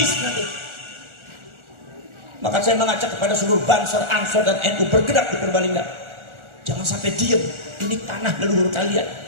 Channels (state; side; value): late; left; 1.4 ms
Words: nanti. Maka saya mengajak kepada seluruh Banser, Ansor dan NU bergerak di Purbalingga. Jangan sampai diam. Ini tanah leluhur kalian,